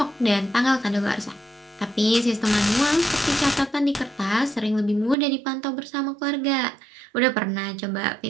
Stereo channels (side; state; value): left; drops out; at 5.2 s